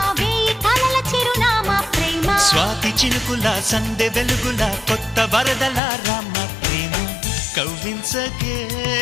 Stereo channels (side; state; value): right; drops out; at 5.8 s